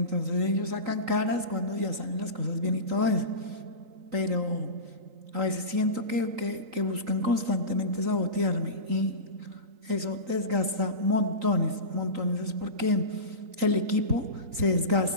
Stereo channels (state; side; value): late; left; 3.9 ms